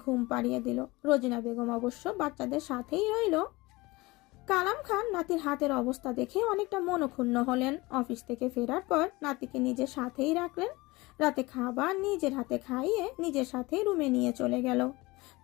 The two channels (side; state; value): right; quieter; 22.1 dB